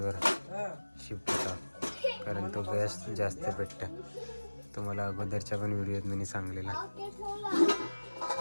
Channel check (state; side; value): inverted; both; correlation -1.00